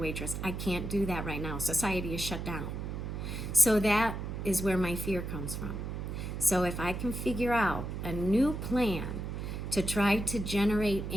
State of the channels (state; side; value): noise; right; hum, 5 dB below the sound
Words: I can't do that right now. Society is shut down. So that is where my fear comes from. So if I can figure out a new plan to try to generate